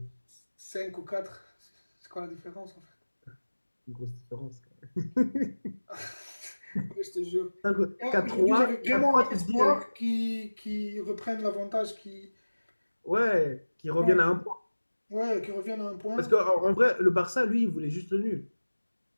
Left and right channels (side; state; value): both; inverted; correlation -1.00